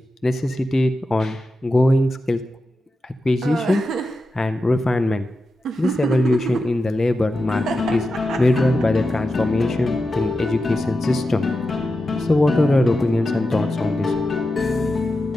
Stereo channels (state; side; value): normal; both; correlation 0.90